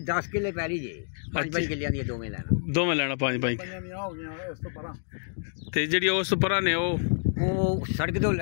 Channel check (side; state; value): right; silent; digital silence